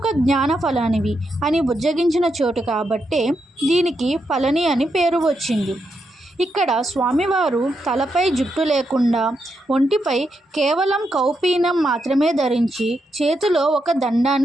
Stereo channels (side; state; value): both; normal; correlation 0.83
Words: జ్ఞాన ఫలానివి అని బుజ్జగించిన చోటు కాబట్టే దీనికి పళని అని పేరు వచ్చింది. ఇక్కడ స్వామివారు తలపై జుట్టు లేకుండా ఒంటిపై కేవలం కౌపీనం మాత్రమే ధరించి చేతిలో ఒక